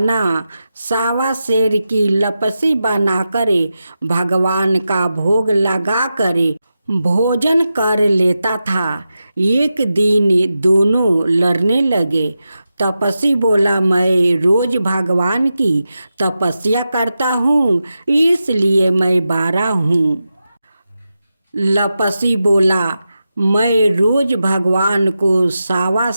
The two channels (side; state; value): both; inverted; correlation -0.91